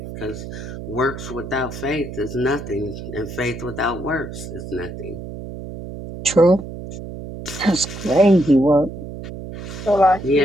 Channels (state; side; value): noise; right; hum, 10 dB below the sound